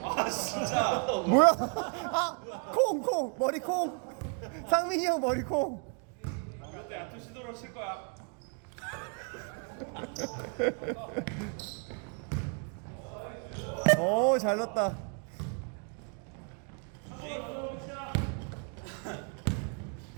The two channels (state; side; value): quieter; left; 38.8 dB